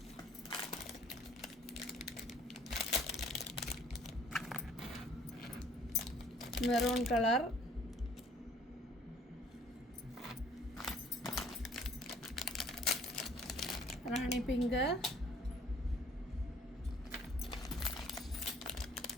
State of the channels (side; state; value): both; normal; correlation 0.58